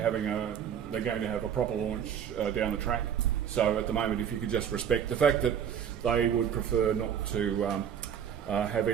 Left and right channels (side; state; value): left; quieter; 8.6 dB